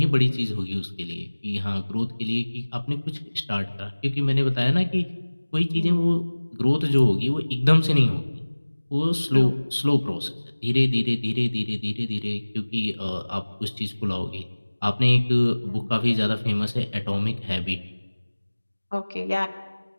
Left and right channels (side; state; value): both; inverted; correlation -1.00